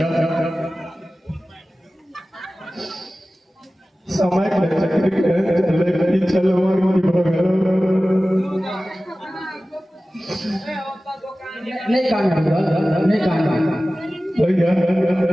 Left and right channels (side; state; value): both; normal; correlation 0.96